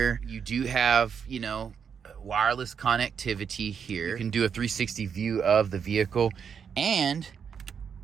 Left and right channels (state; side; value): quieter; left; 7.0 dB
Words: You do have, you know, wireless connectivity here. You can do a 360 view of the vehicle, and